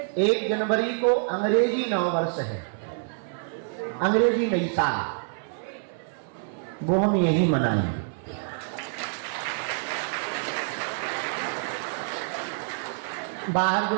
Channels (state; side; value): silent; left; 60 dB below the other